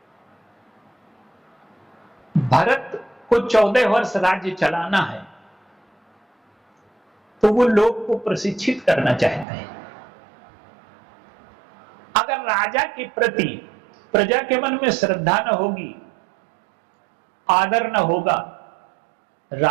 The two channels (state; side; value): drops out; left; at 9.5 s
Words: भरत को 14 वर्ष राज्य चलाना है, तो वो लोग को प्रशिक्षित करना चाहते हैं। अगर राजा के प्रति प्रजा के मन में श्रद्धा न होगी, आदर न होगा,